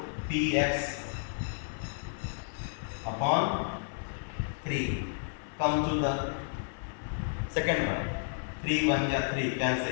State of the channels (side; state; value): right; silent; 57 dB below the other